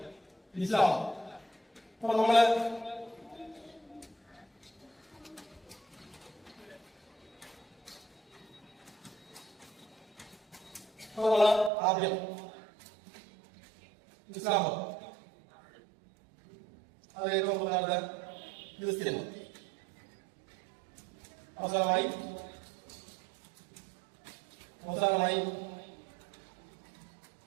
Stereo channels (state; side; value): drops out; left; at 11.7 s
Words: ഇസ്ലാം. അപ്പൊ നമ്മള് ആദ്യം ഇസ്ലാം മതം, അത് ഏറ്റവും പ്രധാനപ്പെട്ട ക്രിസ്ത്യൻ മതം, അവസാനമായി